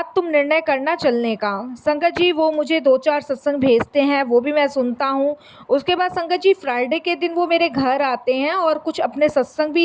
तुम निर्णय करना चलने का। संगत जी वो मुझे 2-4 सत्संग भेजते हैं, वो भी मैं सुनता हूँ। उसके बाद संगत जी फ्राइडे के दिन वो मेरे घर आते हैं और कुछ अपने सत्संग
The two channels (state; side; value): identical; both; correlation 1.00